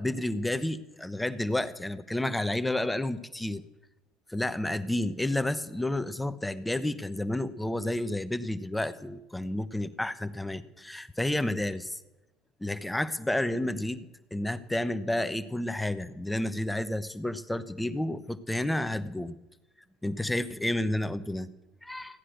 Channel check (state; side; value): normal; both; correlation 0.95